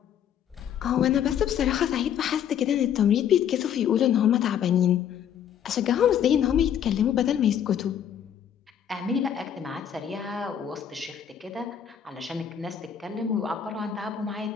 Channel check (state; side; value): quieter; right; 9.0 dB